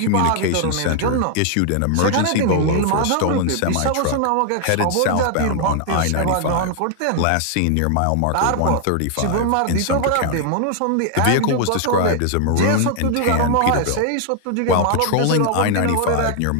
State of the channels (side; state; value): both; different; correlation 0.00